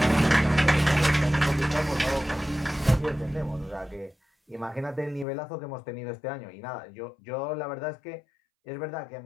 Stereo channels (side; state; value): right; drops out; at 5.2 s